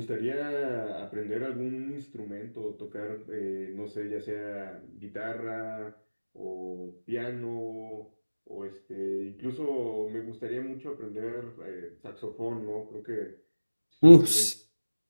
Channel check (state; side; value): inverted; both; correlation -1.00